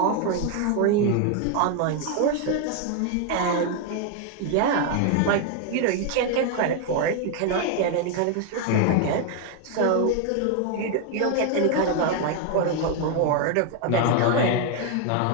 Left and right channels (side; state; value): both; different; correlation 0.01